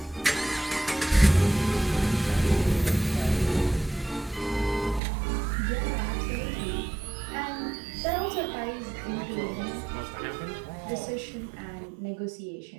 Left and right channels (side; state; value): left; drops out; at 5.0 s